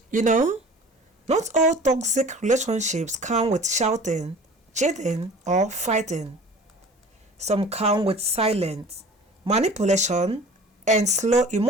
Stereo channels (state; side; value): normal; both; correlation 0.44